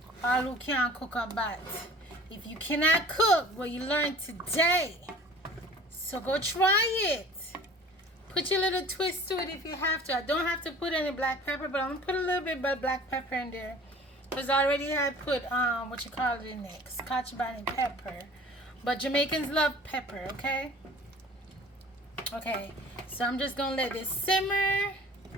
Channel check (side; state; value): both; normal; correlation 0.46